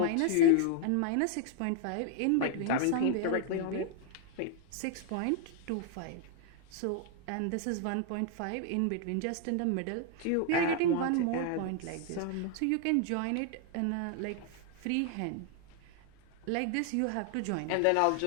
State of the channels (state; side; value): different; both; correlation 0.00